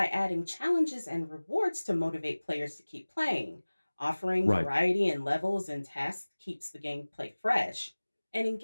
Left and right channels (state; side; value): inverted; both; correlation -1.00